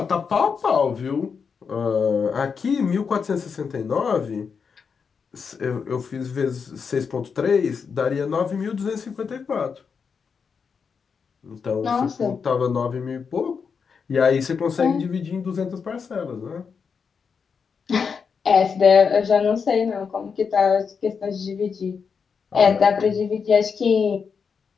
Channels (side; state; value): right; quieter; 5.9 dB